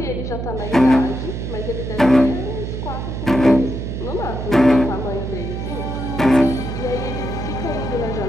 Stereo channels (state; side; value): noise; right; hum, 5 dB below the sound